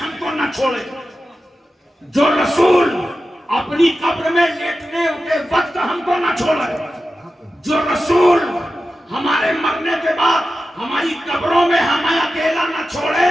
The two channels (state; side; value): normal; both; correlation 0.93